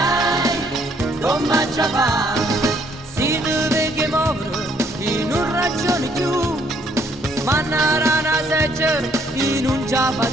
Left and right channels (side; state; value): both; normal; correlation 0.67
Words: come ci fa? Si deve che muovere in un ragione più, ma una rana seggiare in un già